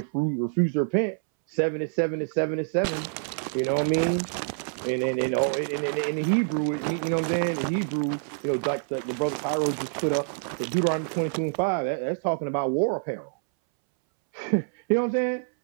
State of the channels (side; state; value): left; silent; 60 dB below the other